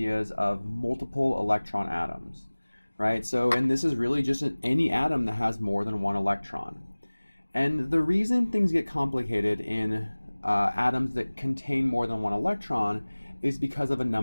of multiple electron atoms, right? And this is really just any atom that has more than one electron. And the reason things get complicated in atoms that contain more than one electron is because of a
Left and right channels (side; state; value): both; inverted; correlation -1.00